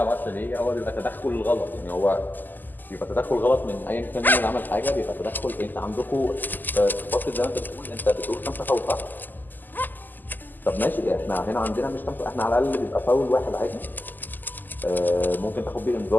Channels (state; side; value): late; right; 0.087 ms